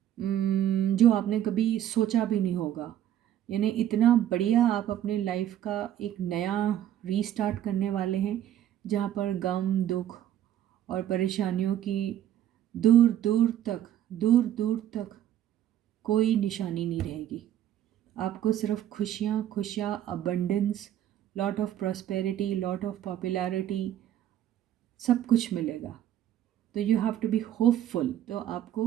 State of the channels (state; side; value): quieter; left; 11.3 dB